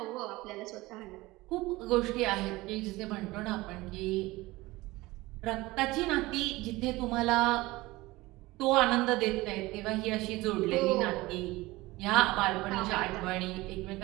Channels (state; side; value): quieter; left; 20.0 dB